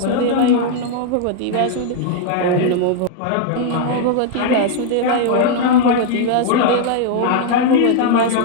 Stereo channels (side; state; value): both; different; correlation 0.00